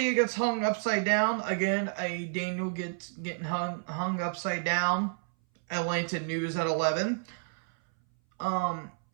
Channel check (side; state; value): left; silent; 58 dB below the other